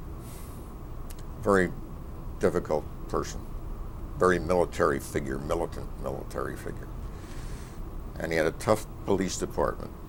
very difficult person, very military figure, militant military figure. And he had a tough police department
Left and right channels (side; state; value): both; identical; correlation 1.00